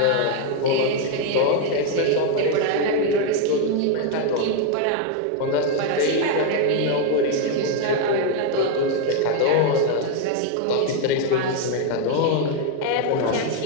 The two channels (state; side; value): different; both; correlation 0.01